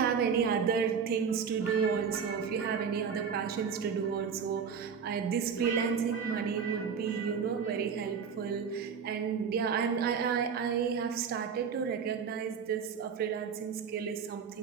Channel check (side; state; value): left; quieter; 6.5 dB